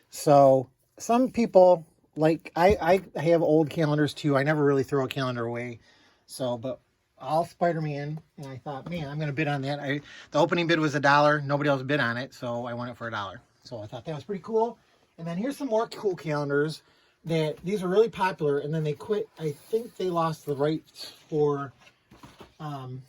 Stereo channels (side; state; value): both; identical; correlation 1.00